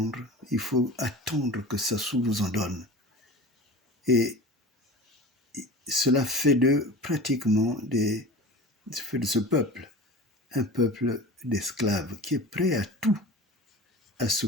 il faut attendre que Sassou vous en donne. Et cela fait de pratiquement fait de ce peuple un peuple d'esclaves qui est prêt à tout, à se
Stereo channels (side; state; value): both; normal; correlation 0.35